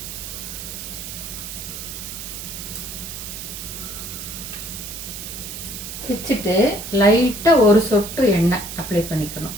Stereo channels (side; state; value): right; noise; hiss, 8 dB below the sound